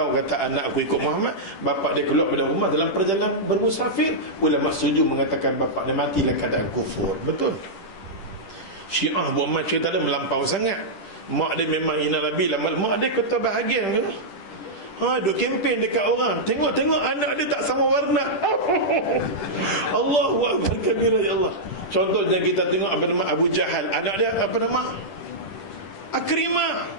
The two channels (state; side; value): late; right; 10 ms